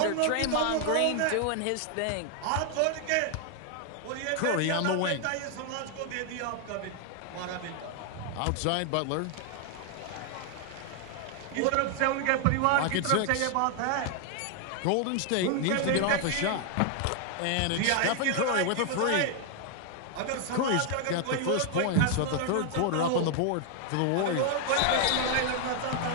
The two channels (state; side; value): different; both; correlation 0.00